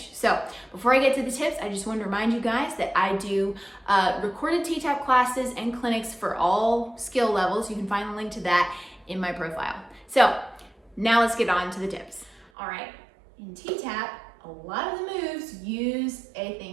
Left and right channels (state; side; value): drops out; left; at 12.5 s